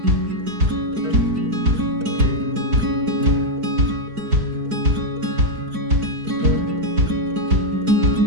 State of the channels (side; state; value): left; late; 4.6 ms